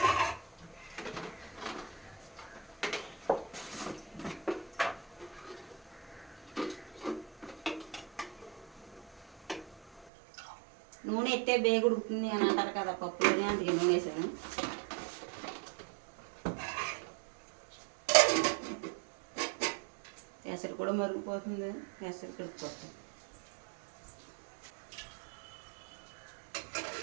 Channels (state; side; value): drops out; left; at 10.1 s